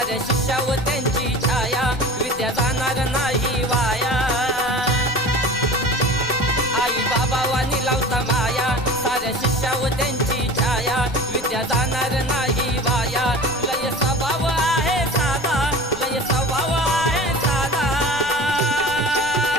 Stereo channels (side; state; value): left; noise; rumble, 17 dB below the sound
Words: शिष्यावर त्यांची छाया, विद्या जाणार नाही वाया। आई बाबा वाणी लावता माया, साऱ्या शिष्यावर त्यांची छाया, विद्या जाणार नाही वाया। लय स्वभाव आहे साधा, लय स्वभाव आहे साधा,